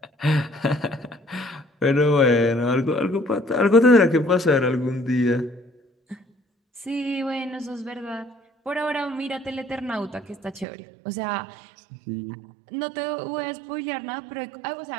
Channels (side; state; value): left; drops out; at 10.7 s